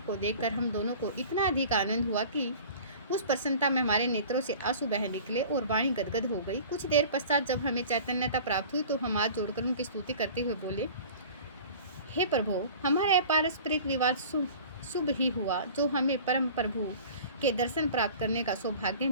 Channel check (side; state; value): both; inverted; correlation -0.42